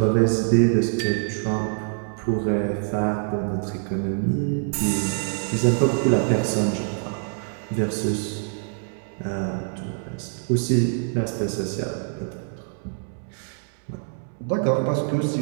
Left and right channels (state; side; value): silent; left; digital silence